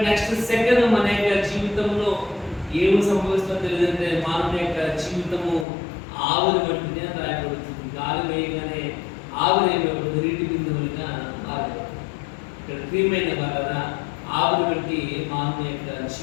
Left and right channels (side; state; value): right; drops out; at 5.7 s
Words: నెక్స్ట్ సెకండ్ మన యొక్క జీవితంలో ఏమి సంభవిస్తుందో తెలియదంటే మానవ యొక్క జీవితము ఆవిరి వంటిది అని రాయబడుతుంది. గాలి వేయగానే ఆవిరి నీటి బిందువులుగా మారదు. ఇక్కడ ప్రియమైన వల్ల ఆవిరి వంటి మానవ యొక్క